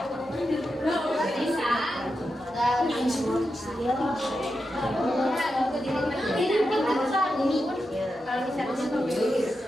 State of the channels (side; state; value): both; normal; correlation 0.88